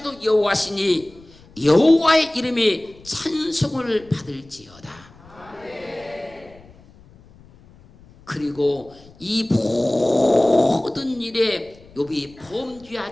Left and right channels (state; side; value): noise; left; rumble, 25 dB below the sound